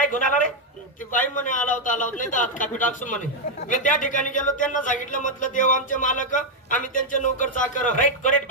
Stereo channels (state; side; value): normal; both; correlation 0.00